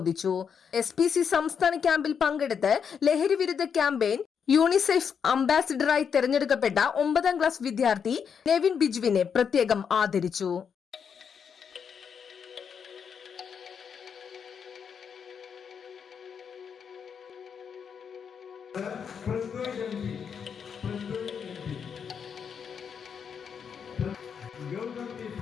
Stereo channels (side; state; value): right; quieter; 7.0 dB